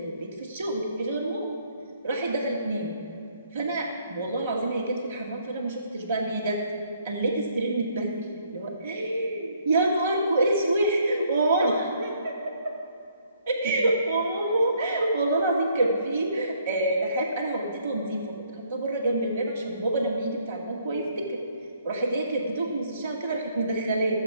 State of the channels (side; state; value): both; inverted; correlation -0.66